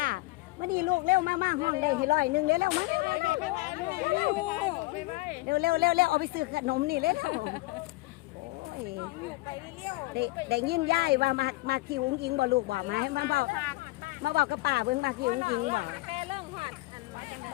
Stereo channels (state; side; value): quieter; right; 21.4 dB